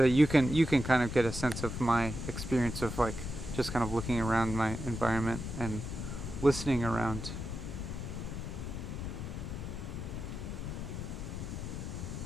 that you can kind of get a sense of my experience of like just kind of looking around my environment and listening around.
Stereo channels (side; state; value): left; noise; rumble, 6 dB below the sound